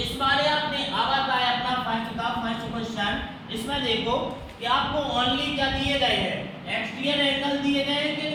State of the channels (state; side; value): identical; both; correlation 1.00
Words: बारे आपने अब आता है अपना फर्स्ट क्वेश्चन। इसमें देखो कि आपको ओनली क्या दिए गए हैं, एक्सटीरियर एंगल दिए गए हैं कि